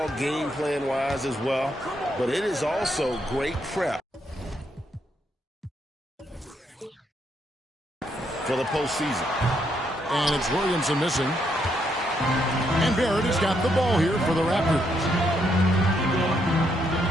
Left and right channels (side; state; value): both; normal; correlation 0.76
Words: game plan-wise as well, but it is also great prep for the postseason. And it's Williamson missing. And Barrett has got the ball here for the Raptors.